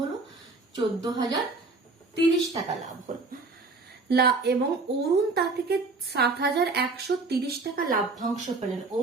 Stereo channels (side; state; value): left; quieter; 3.7 dB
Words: হলো? 14,030 টাকা লাভ হলো। এবং অরুণ তা থেকে 7,130 টাকা লাভ্যাংশ পেলেন।